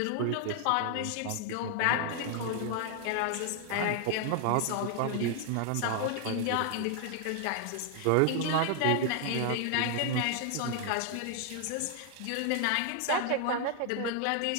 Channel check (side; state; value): both; different; correlation 0.00